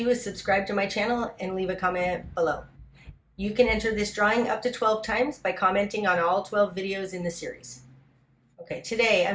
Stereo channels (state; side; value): identical; both; correlation 1.00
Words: is subscribe to my channel and leave a comment below. You can enter this drawing up to 12 times by commenting on all 12 videos in the series. Okay, today